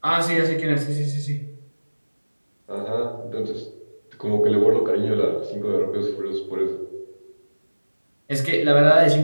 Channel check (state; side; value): inverted; both; correlation -1.00